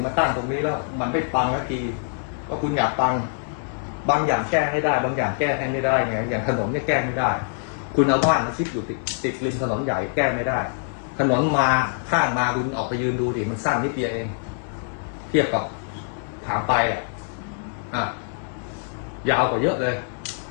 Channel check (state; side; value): silent; right; 62 dB below the other